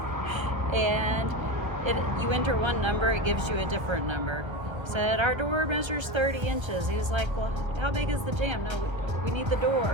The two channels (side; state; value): left; late; 1.3 ms